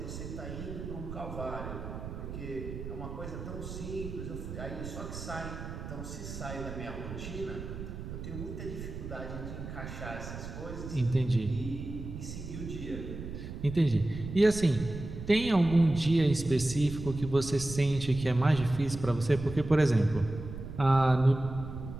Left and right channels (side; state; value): right; noise; rumble, 9 dB below the sound